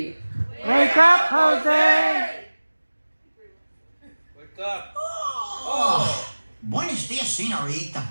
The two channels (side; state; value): both; inverted; correlation -1.00